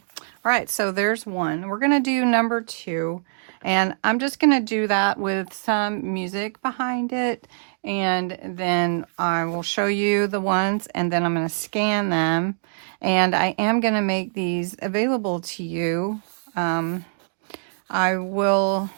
All right, so there's one. We're going to do number 2. And I'm just going to do that with some music behind it. And then I will show you the ones, and then I'm going to scan them. And I am going to make these available to you. I will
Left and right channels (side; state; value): left; silent; digital silence